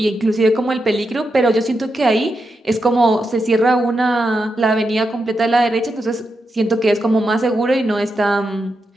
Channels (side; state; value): both; normal; correlation 0.86